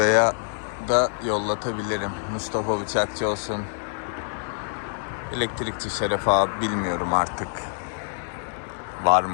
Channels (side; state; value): right; silent; 61 dB below the other